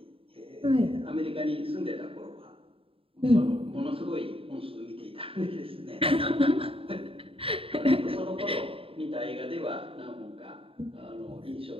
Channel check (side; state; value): left; late; 0.27 ms